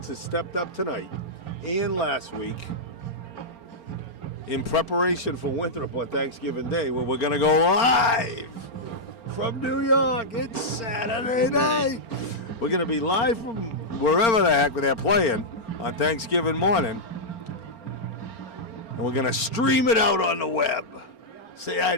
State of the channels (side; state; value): right; late; 4.4 ms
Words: has stepped up tonight and last week in preparation for Winthrop on Thanksgiving Day, where we're going to go live from New York. It's Saturday night. We're going to be live from wherever the heck they're playing on Thanksgiving morning. And we're going to stream it out on the web. Say hi